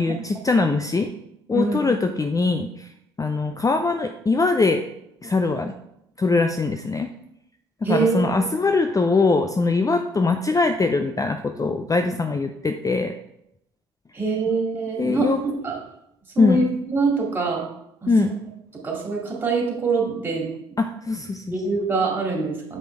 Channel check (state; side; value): normal; both; correlation 0.72